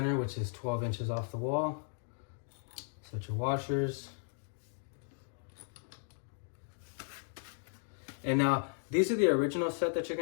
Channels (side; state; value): right; silent; digital silence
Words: which is 12 inches off the wall. Set your washers. And now these are the original set that you're